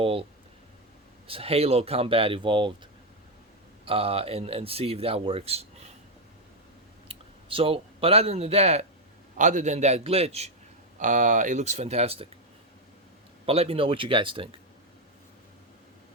Halo Combat Evolved and see if that works. So, but other than that glitch, it looks fantastic. But let me know what you guys think.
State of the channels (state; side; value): normal; both; correlation 0.03